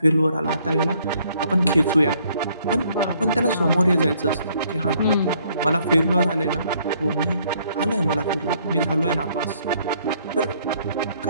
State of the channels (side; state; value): both; inverted; correlation -0.66